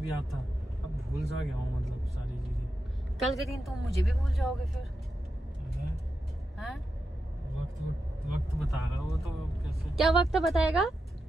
याद था। अब भूल सा गया हूँ मतलब सारी चीजें। कल के दिन तुम मुझे भी भूल जाओगे फिर। हाँ? वक्त बताएगा वो तो। कैसे क्या वक्त बताएगा?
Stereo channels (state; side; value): normal; both; correlation 0.88